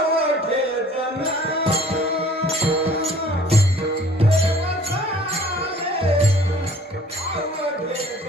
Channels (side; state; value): both; normal; correlation 0.53